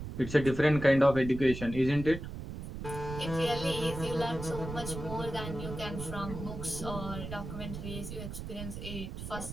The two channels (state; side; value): noise; right; rumble, 8 dB below the sound